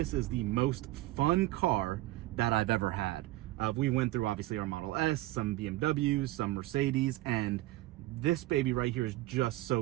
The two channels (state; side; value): quieter; left; 17.6 dB